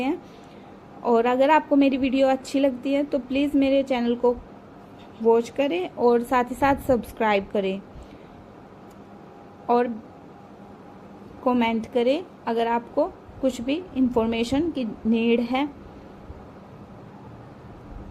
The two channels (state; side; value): identical; both; correlation 1.00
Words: हैं, और अगर आपको मेरी वीडियो अच्छी लगती है तो प्लीज़ मेरे चैनल को वॉच करें और साथ ही साथ सब्सक्राइब करें और कमेंट करें अगर आपको कुछ भी इंफॉर्मेशन की नीड है।